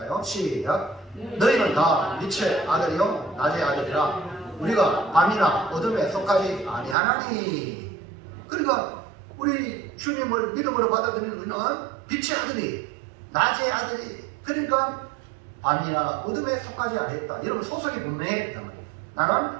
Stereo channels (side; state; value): left; drops out; at 7.0 s